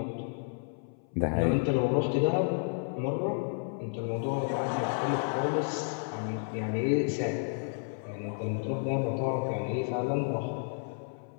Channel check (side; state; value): right; silent; 57 dB below the other